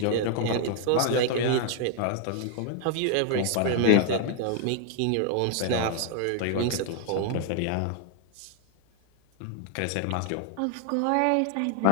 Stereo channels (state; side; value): different; both; correlation 0.00